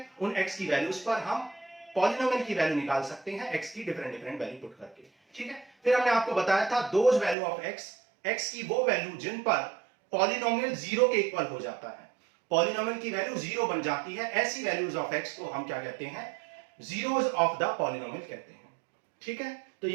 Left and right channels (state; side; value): drops out; left; at 7.4 s